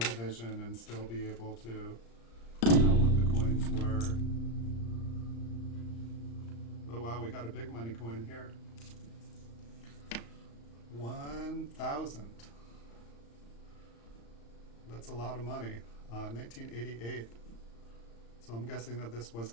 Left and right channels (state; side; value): late; right; 35 ms